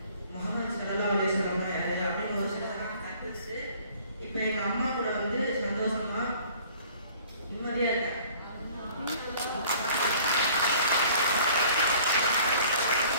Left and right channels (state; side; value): inverted; both; correlation -0.53